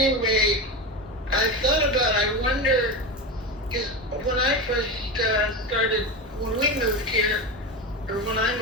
I thought about, I wonder, because when I first started, when we moved here, or when I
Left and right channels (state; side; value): normal; both; correlation 0.21